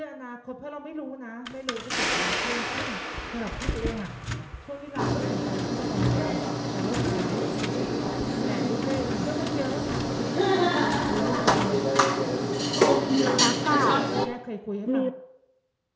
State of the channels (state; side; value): identical; both; correlation 1.00